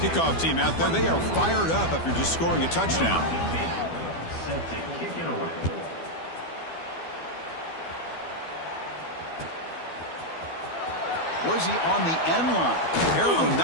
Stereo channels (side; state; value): right; late; 12 ms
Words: Kickoff team out there, they are fired up after just scoring a touchdown. Set to kick it away. Was he on the end line? Apparently